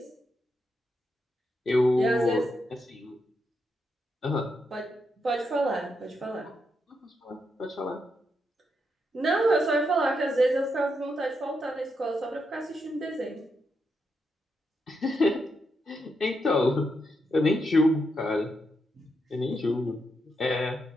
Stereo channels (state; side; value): normal; both; correlation 0.82